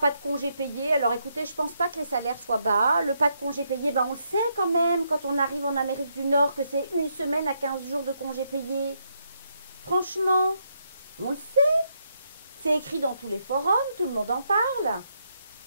de congés payés. Alors écoutez, je pense pas que les salaires soient bas. Le pas de congés payés, ben, on le sait quand même quand on arrive en Amérique du Nord que c'est 1 semaine à 15 jours de congés payés. Franchement, on le sait. C'est écrit dans tous les forums, tout le monde en parle.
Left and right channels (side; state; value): both; inverted; correlation -0.78